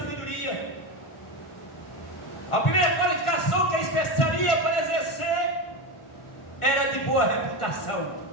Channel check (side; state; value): right; late; 1.4 ms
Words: A primeira qualificação que eles precisariam para exercer era de boa reputação.